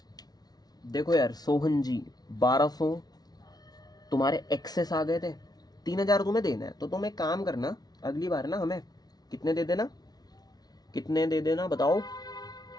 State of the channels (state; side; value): late; right; 0.19 ms